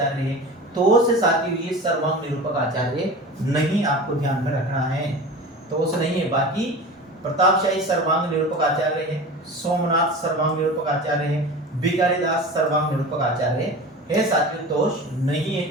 है, तो से साथियों ये सर्वांग निरूपक आचार्य नहीं, आपको ध्यान में रखना है। तो से नहीं है, बाकी प्रतापशाही सर्वांग निरूपक आचार्य है, सोमनाथ सर्वांग निरूपक आचार्य है, भिखारीदास सर्वांग निरूपक आचार्य है साथियों, तोष नहीं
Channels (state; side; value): normal; both; correlation 0.34